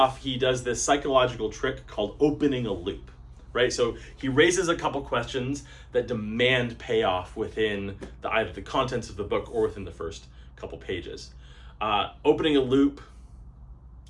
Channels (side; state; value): both; identical; correlation 1.00